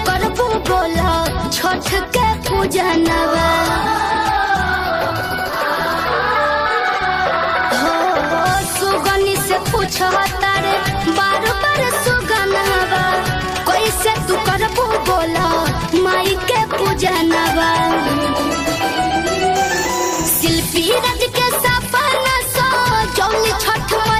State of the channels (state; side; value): identical; both; correlation 1.00